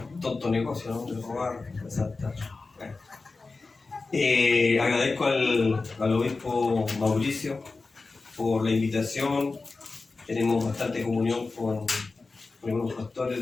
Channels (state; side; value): quieter; right; 3.8 dB